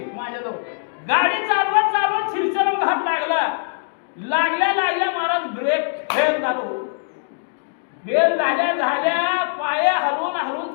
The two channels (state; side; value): silent; right; digital silence